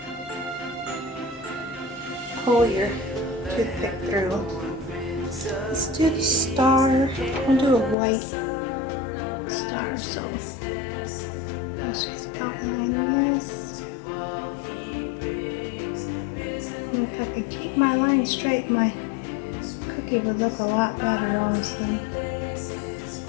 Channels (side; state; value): right; drops out; at 8.0 s